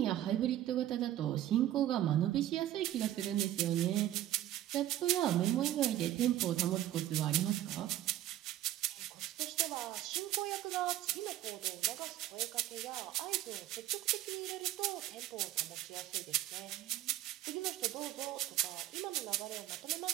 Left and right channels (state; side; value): quieter; left; 13.1 dB